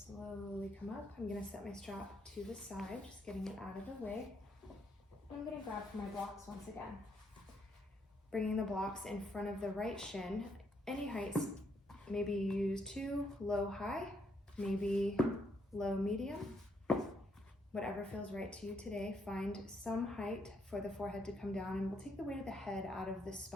come up. I'm going to set my strap to the side, just getting it out of the way. I'm going to grab for my blocks once again. Bringing the blocks in front of the right shin, any heights. Maybe you use 2, low, high, maybe low, medium. Whatever feels right to you today. Find some height for the forehead to come down, and we'll take the weight of the head out of the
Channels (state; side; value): normal; both; correlation 0.74